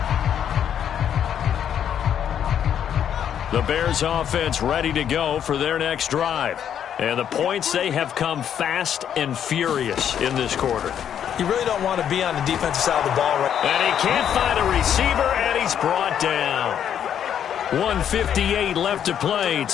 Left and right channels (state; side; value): quieter; right; 9.2 dB